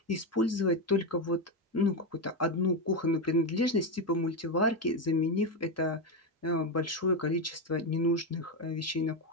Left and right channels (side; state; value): both; normal; correlation 0.10